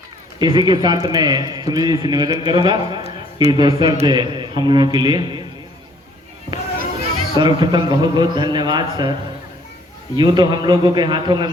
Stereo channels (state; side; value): normal; both; correlation 0.60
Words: इसी के साथ मैं सुनील जी से निवेदन करूंगा कि दो शब्द हम लोगों के लिए। सर्वप्रथम बहुत बहुत धन्यवाद सर। यूँ तो हम लोगों के हाथों में